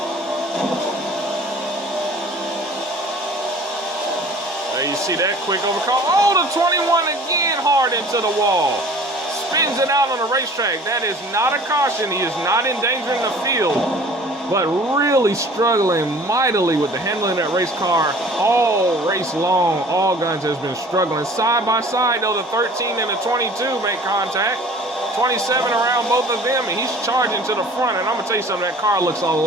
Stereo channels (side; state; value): both; normal; correlation 0.48